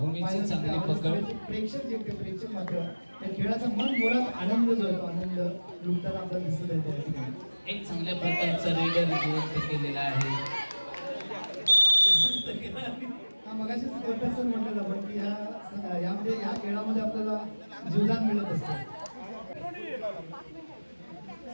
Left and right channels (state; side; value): inverted; both; correlation -1.00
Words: चांगली पकड. प्रेक्षक मात्र त्या खेळाचा मन मुळात आनंद जो आहे तो आनंद लुटताना आपल्याला दिसत आहे. त्या ठिकाणी एक चांगल्या प्रकारचा रेडर जिवंत केलेला आहे. मगाशीच सर म्हटलं आपण की यामध्ये या खेळामध्ये आपल्याला जीवदान मिळत असतं.